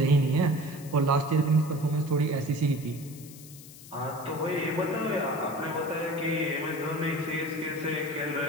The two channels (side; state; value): left; noise; hiss, 18 dB below the sound